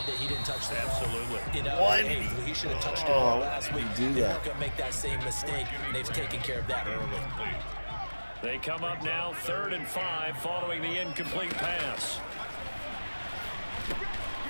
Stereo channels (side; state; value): both; inverted; correlation -1.00